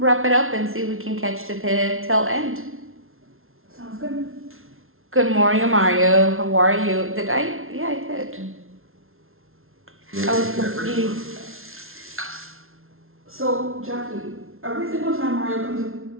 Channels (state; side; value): late; left; 0.61 ms